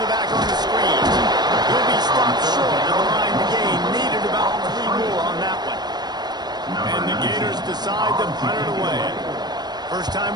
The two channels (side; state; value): left; late; 0.20 ms